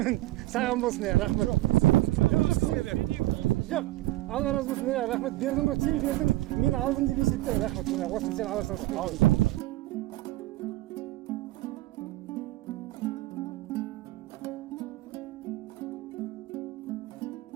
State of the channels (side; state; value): left; quieter; 17.5 dB